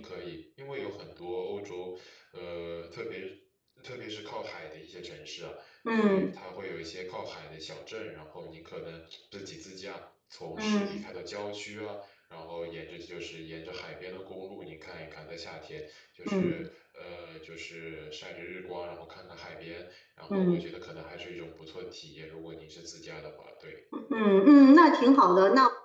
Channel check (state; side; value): identical; both; correlation 1.00